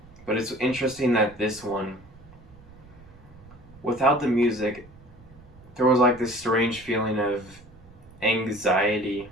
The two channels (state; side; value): noise; right; rumble, 22 dB below the sound